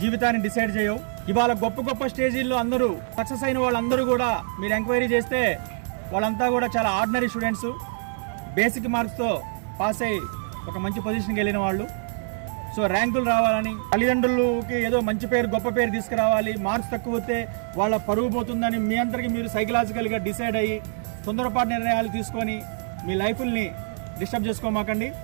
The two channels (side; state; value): left; silent; digital silence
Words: జీవితాన్ని decide చేయవు. ఇవాళ గొప్ప గొప్ప స్టేజీల్లో అందరూ సక్సెస్ అయిన వాళ్ళందరూ కూడా మీరు ఎంక్వైరీ చేస్తే వాళ్ళంతా కూడా చాలా ఆర్డినరీ స్టూడెంట్స్, బేసిక్ మార్క్స్తో పాస్ అయ్యి ఒక మంచి పొజిషన్కి వెళ్ళిన వాళ్ళు. సో ర్యాంకులు రావాలని, తల్లిదండ్రులకి ఏదో మంచి పేరు గొప్ప పేరు తీసుకురావాలి, మార్క్స్ తక్కువ వస్తే వాళ్ళ పరుగు పోతుందని మీ అందరికీ మీరు సైకలాజికల్గా డిసైడ్ అయ్యి తొందరపాటు నిర్ణయాలు తీసుకొని మీ లైఫ్ని డిస్టర్బ్ చేసుకోమాకండి.